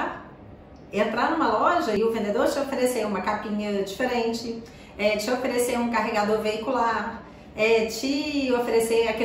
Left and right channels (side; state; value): both; identical; correlation 1.00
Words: entrar numa loja e o vendedor te oferecer uma capinha diferente, te oferecer um carregador veicular, te oferecer